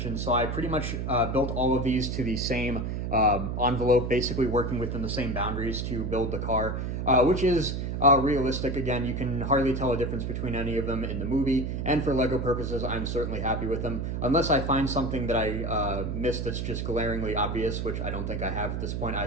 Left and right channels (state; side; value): noise; right; hum, 2 dB below the sound